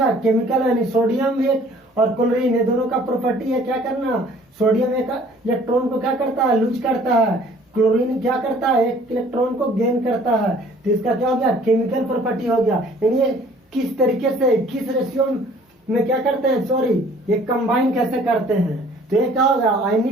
केमिकल, यानी सोडियम एक और क्लोरीन, ये दोनों का प्रॉपर्टी है क्या करना, सोडियम एक इलेक्ट्रॉन को क्या करता है, लूज करता है, क्लोरीन क्या करता है, एक इलेक्ट्रॉन को गेन करता है। तो इसका क्या हो गया, केमिकल प्रॉपर्टी हो गया। यानी ये किस तरीके से, किस रेशियो में क्या करते हैं, सॉरी, ये कंबाइन कैसे करते हैं। तो ये क्या हो गया,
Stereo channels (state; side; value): normal; both; correlation 0.54